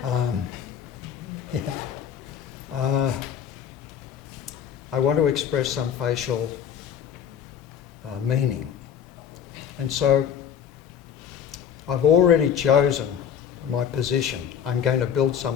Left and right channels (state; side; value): quieter; right; 8.5 dB